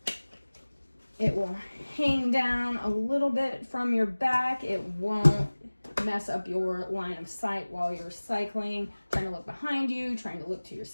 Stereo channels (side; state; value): both; inverted; correlation -1.00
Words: It will hang down a little bit from your back. It won't mess up your line of sight while you're cycling, trying to look behind you, trying to look to your